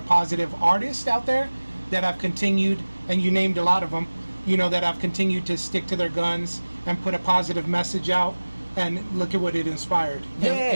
positive artists out there that have continued, and you named a lot of them, you know, that have continued to stick to their guns and put a positive message out, and look at what it inspired. Yeah.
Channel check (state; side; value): inverted; both; correlation -1.00